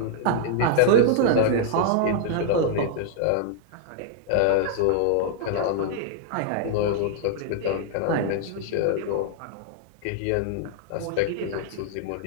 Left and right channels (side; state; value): both; different; correlation -0.01